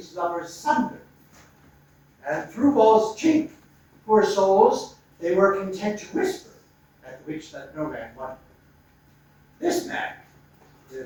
lovers sunder. And through wall's chink, poor souls, they were content to whisper, at which that no man wondered. This man,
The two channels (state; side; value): identical; both; correlation 1.00